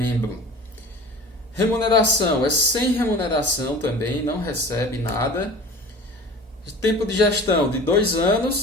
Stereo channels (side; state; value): both; normal; correlation 0.40